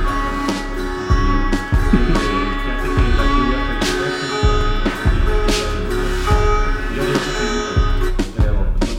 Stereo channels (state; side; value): identical; both; correlation 1.00